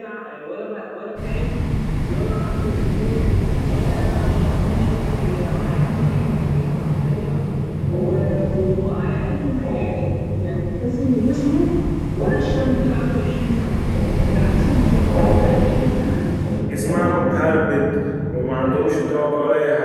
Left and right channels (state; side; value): identical; both; correlation 1.00